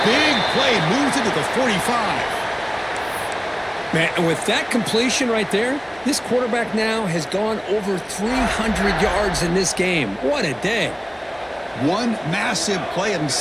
big play moves it to the 45. Man, and with that completion right there, this quarterback now has gone over 300 yards in this game. What a day. One massive play, and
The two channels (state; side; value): identical; both; correlation 1.00